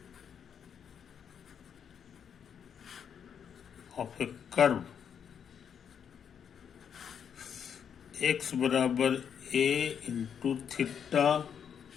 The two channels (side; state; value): right; quieter; 7.9 dB